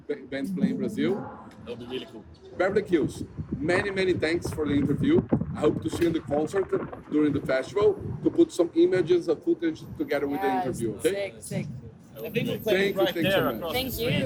bands playing Brazil. That'll be really cool. Beverly Kills, many thanks for the interview. I hope to see you in the concert during the festival to put some images of footage together with the interview. Okay? Sick. I think we're Thank playing you, right thanks there so much. across Thank the street.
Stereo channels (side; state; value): both; identical; correlation 1.00